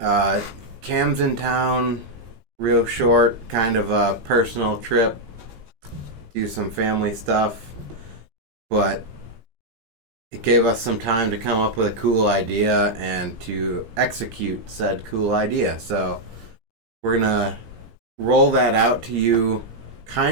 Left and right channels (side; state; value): left; late; 17 ms